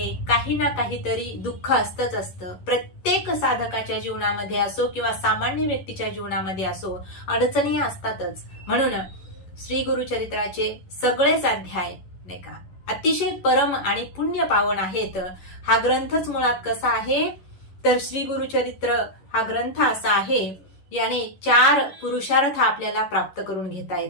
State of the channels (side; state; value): right; late; 11 ms